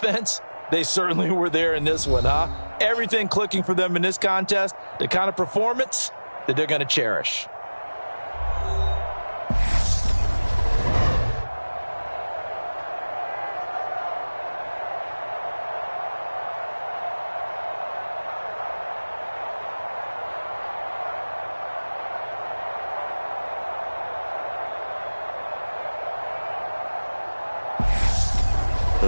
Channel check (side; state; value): both; inverted; correlation -1.00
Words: they certainly were there in this one, huh? Everything clicking for them in this contest, the kind of performance that they're going to cherish.